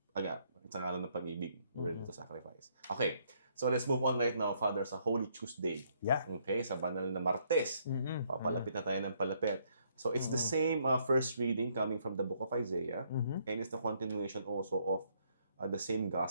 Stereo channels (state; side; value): inverted; both; correlation -0.70